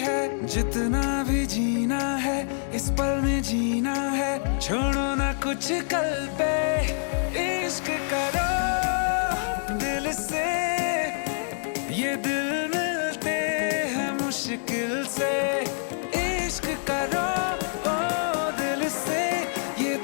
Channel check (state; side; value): silent; right; 60 dB below the other